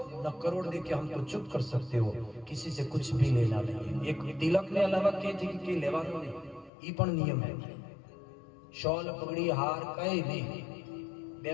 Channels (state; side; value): drops out; right; at 6.7 s